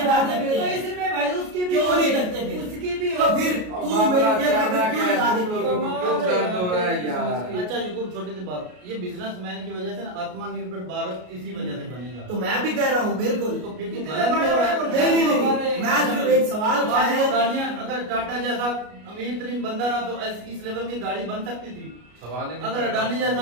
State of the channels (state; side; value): late; left; 33 ms